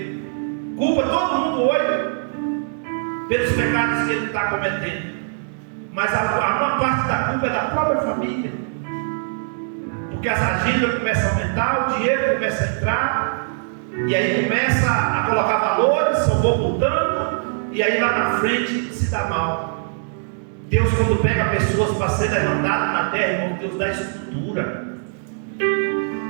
Culpa todo mundo hoje pelos pecados que ele está cometendo. Mas a maior parte da culpa é da própria família. Porque as agendas começam a aumentar, o dinheiro começa a entrar, e aí começa a colocar valores, só vou botando, e aí lá na frente se dá mal. Deus, quando pega pessoas para ser levantado na terra, irmão, Deus dá estrutura.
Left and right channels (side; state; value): left; silent; digital silence